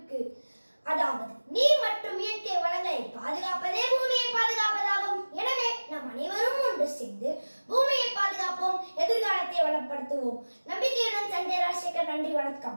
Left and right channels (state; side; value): inverted; both; correlation -1.00